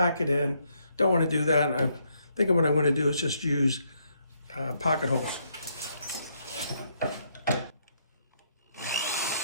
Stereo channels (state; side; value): inverted; both; correlation -0.74